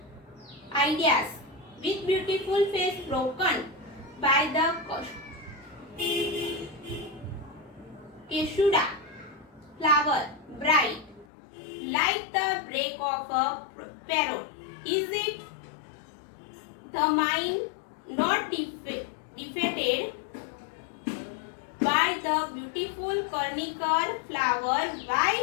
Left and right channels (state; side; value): drops out; right; at 11.2 s